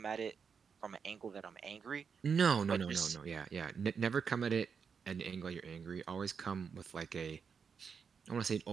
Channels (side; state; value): left; quieter; 6.2 dB